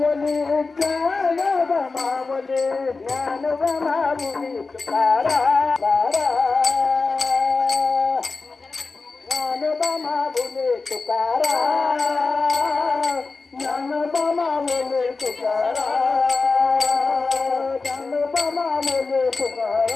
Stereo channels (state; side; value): quieter; right; 4.0 dB